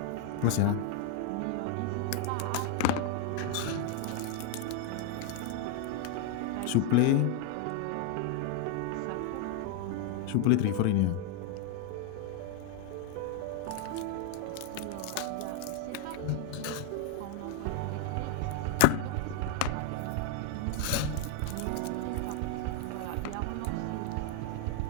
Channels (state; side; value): different; both; correlation 0.00